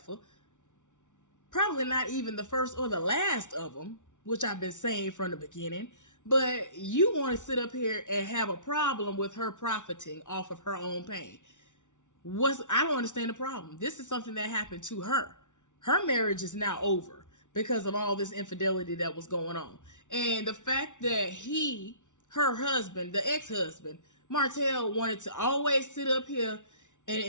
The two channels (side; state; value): right; late; 0.86 ms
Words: Probably not even the first or the last of them, which I've been saying from the beginning. But you want to sit up here and have a problem with her profiting off of her own pain. I don't understand the problem. This is something that happened to her. Her marriage is now over because of all this infidelity that was going on. And the fact that her husband, the ex-husband, Martell, wanted to always sit up here and